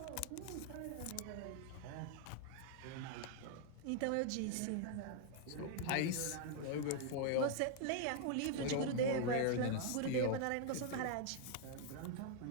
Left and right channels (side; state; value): both; different; correlation 0.00